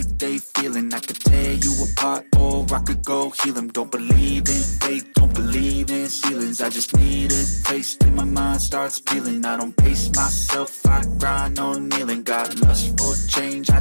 they feeling. I could tear you apart or I could go heal them. Don't believe in fate, don't believe in ceilings. I just need a taste and my mind starts peeling. I don't pace myself, I grind on kneeling. Got lust for change, I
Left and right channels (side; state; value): both; inverted; correlation -1.00